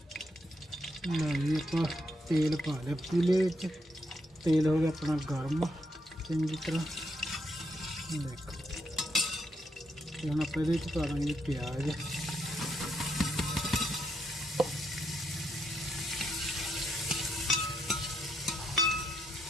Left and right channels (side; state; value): both; normal; correlation 0.78